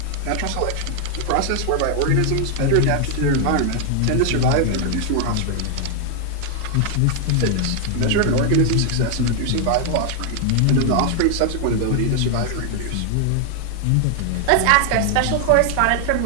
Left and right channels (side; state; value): both; different; correlation 0.00